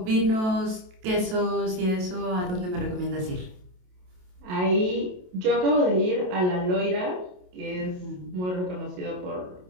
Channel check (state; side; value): late; left; 27 ms